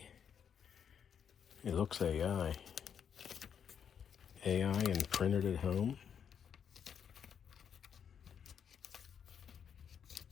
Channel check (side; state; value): right; quieter; 7.8 dB